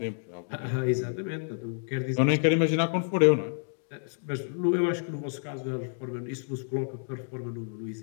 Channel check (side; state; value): right; silent; digital silence